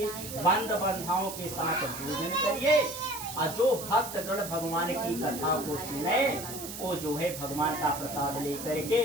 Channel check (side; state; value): right; noise; hiss, 9 dB below the sound